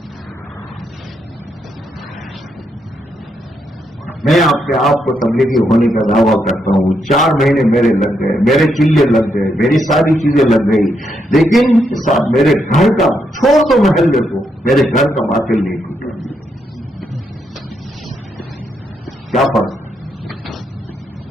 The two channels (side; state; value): both; normal; correlation 0.79